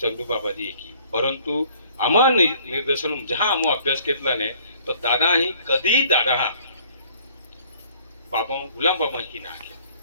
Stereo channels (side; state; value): both; inverted; correlation -0.58